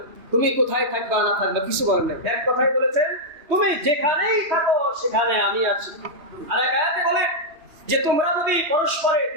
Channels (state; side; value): late; left; 2.9 ms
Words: তুমি কোথায় থাকবা না থাকবা, কিছু বলেন না। এক কথাই বলেছেন তুমি যেখানেই থাকো সেখানে আমি আছি। আর এক আয়াতে বলে যে তোমরা যদি পরস্পরে